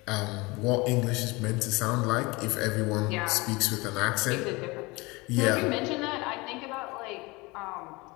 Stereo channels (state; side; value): quieter; right; 24.1 dB